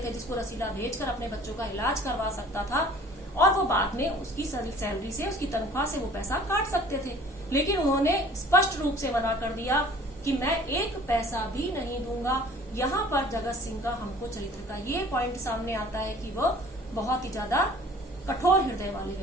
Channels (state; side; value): normal; both; correlation 0.50